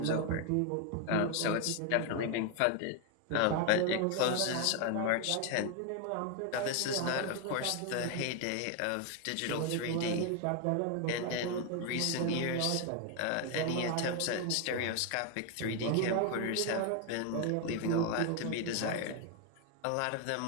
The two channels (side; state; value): both; different; correlation 0.01